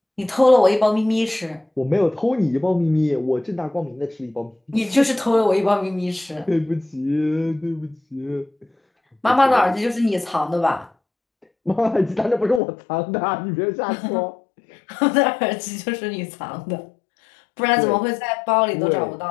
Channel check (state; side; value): drops out; right; at 12.6 s